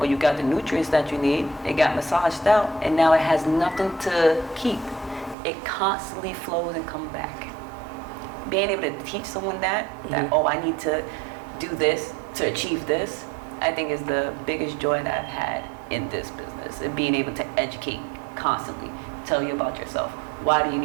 you got the nutrients that you need, it got massaged out, and now it has nothing to keep. It constantly flows and comes back. Being able to teach someone that oh, I need to do this to achieve this, I think is the biggest joy that I've had in this business, and being able to educate constantly, tell you about yourself. Why do you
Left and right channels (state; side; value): drops out; left; at 5.4 s